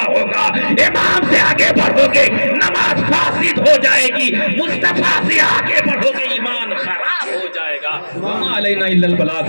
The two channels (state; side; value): inverted; both; correlation -1.00